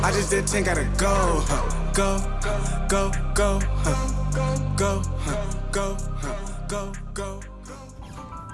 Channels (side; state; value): both; identical; correlation 1.00